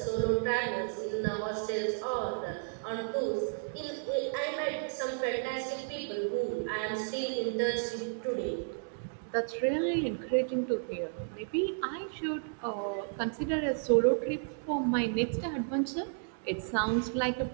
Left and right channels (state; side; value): silent; left; digital silence